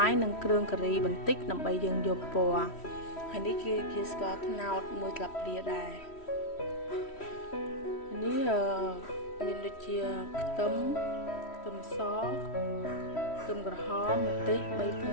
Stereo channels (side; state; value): right; late; 3.1 ms